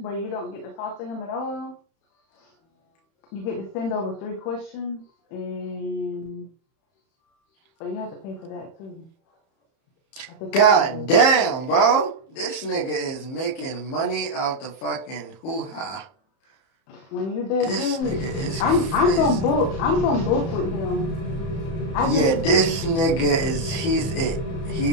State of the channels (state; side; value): late; right; 31 ms